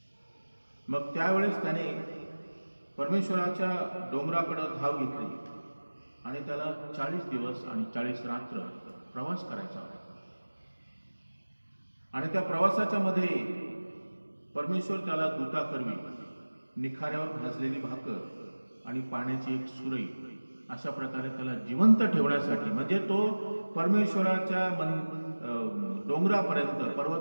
मग त्यावेळेस त्याने परमेश्वराच्या डोंगराकडे धाव घेतली आणि त्याला 40 दिवस आणि 40 रात्र प्रवास करायचा होता. आणि त्या प्रवासाच्या मध्ये परमेश्वर त्याला दूताकरवी निखाऱ्यावर भाजलेली भाकर आणि पाण्याची एक सुरई अशा प्रकारे त्याला जिवंत ठेवण्यासाठी, म्हणजे तो परमेश्वराच्या डोंगरापर्यंत,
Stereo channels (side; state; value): both; inverted; correlation -1.00